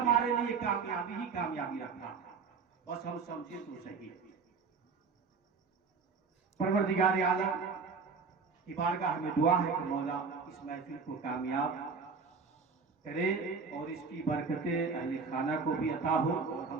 लिए कामयाबी ही कामयाबी रखा। बस हम समझे तो सही। परवरदिगार आलम की बारगाह में दुआ है कि मौला इस महफिल को कामयाब करे और इसकी बरकतें अहले खाना को भी अता हो और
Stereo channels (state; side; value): quieter; left; 5.1 dB